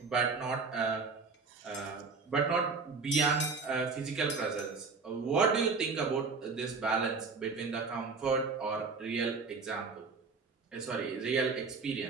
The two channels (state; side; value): quieter; left; 4.5 dB